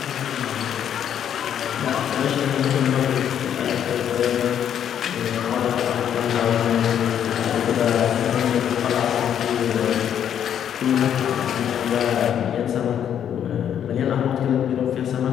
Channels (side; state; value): right; quieter; 9.3 dB